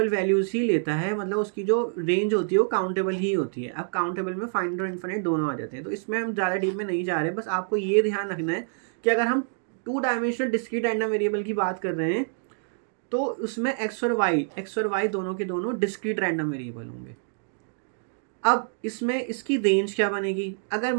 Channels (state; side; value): silent; left; digital silence